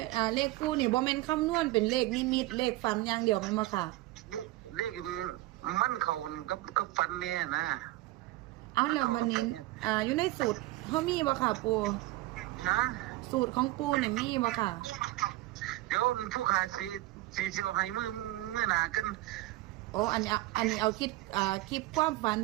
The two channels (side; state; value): left; quieter; 18.0 dB